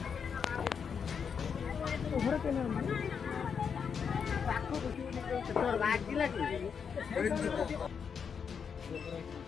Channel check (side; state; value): right; quieter; 6.6 dB